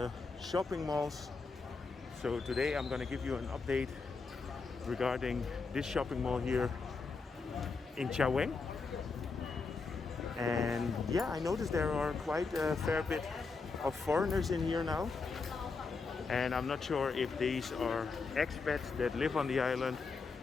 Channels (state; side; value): quieter; right; 4.4 dB